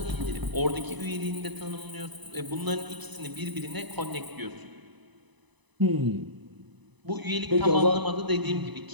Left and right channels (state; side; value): late; left; 1.0 ms